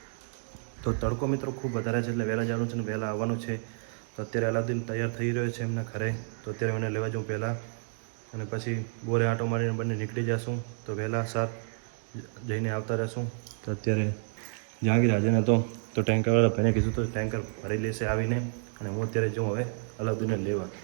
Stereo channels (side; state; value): left; silent; 58 dB below the other